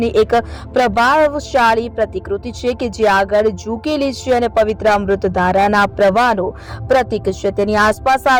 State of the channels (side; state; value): both; identical; correlation 1.00